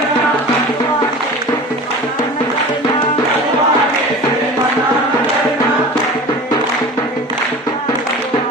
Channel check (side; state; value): both; normal; correlation 0.37